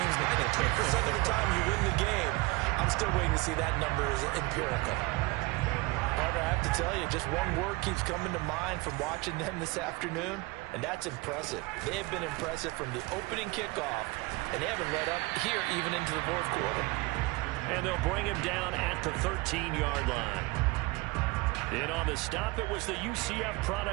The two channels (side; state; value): left; quieter; 23.8 dB